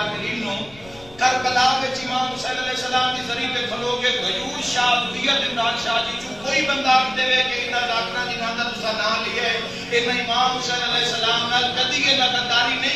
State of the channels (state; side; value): noise; left; rumble, 22 dB below the sound